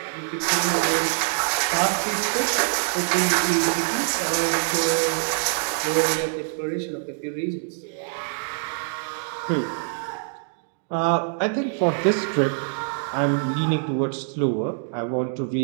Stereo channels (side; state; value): left; silent; digital silence